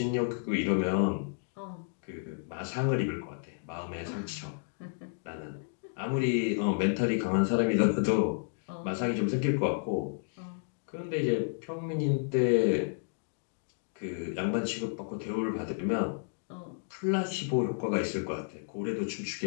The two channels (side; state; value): right; silent; digital silence